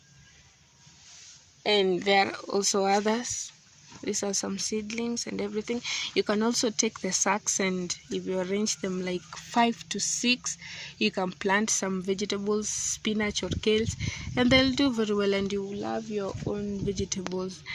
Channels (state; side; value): identical; both; correlation 1.00